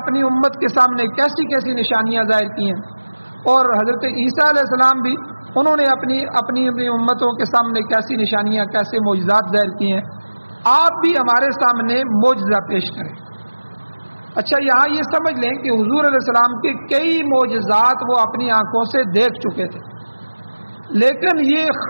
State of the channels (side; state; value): both; inverted; correlation -1.00